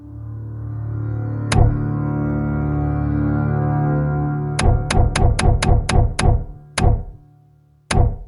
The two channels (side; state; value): both; identical; correlation 1.00